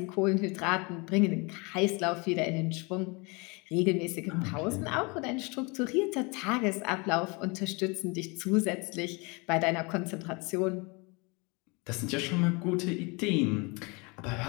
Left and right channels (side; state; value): right; quieter; 28.7 dB